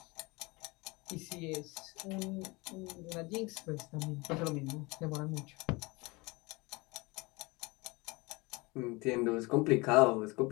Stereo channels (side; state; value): right; quieter; 25.0 dB